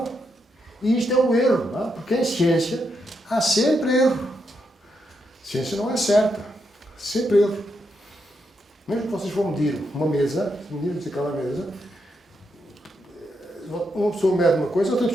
e isto é o erro, não é? Porque em ciência há sempre erro. A ciência não é certa, sempre erro. Mesmo que vocês vão medir uma mesa, medirmos aquela mesa, uma pessoa mede uma coisa, outra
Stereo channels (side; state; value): both; normal; correlation 0.81